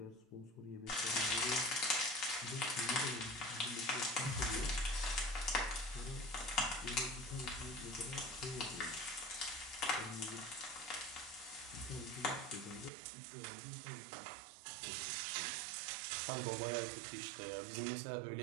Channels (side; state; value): left; drops out; at 12.9 s